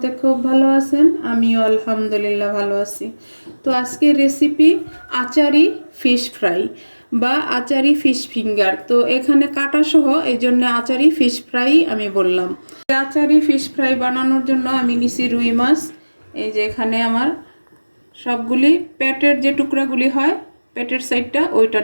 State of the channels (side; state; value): both; inverted; correlation -1.00